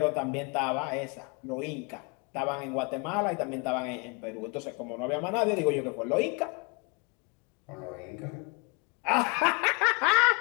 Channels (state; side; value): quieter; right; 31.7 dB